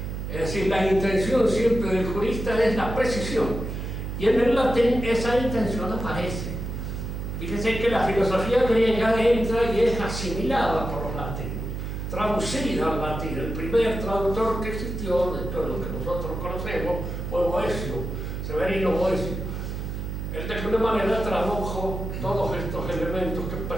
Es decir, la intención siempre del jurista es la precisión, y en el latín esa intención aparece. Fíjense que la filosofía griega entra y es asimilada por los latinos, traducida al latín. El primer traductor que existió, dentro de lo que nosotros conocemos, fue Boecio, Severino Boecio. Él de alguna manera tradujo todos estos elementos que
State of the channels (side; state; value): right; noise; hum, 5 dB below the sound